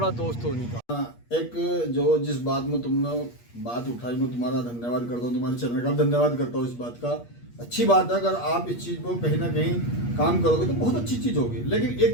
दोस्त तो उन्हीं का। एक जो जिस बात में तुमने बात उठाई, मैं तुम्हारा धन्यवाद करता हूँ, तुम्हारे चैनल का धन्यवाद करता हूँ इस बात का। अच्छी बात है, अगर आप इस चीज़ को कहीं ना कहीं काम करोगे तो बहुत अच्छी चीज़ होगी। लेकिन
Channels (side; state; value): right; late; 8.4 ms